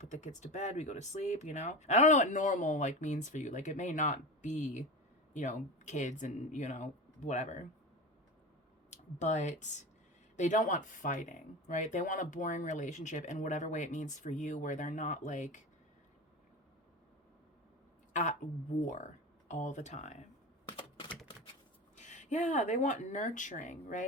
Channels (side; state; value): both; normal; correlation 0.27